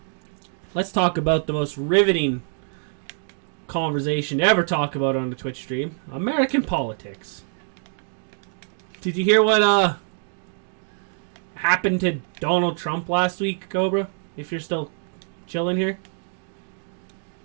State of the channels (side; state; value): left; silent; 62 dB below the other